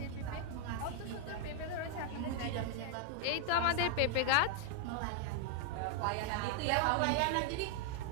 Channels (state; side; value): different; both; correlation 0.00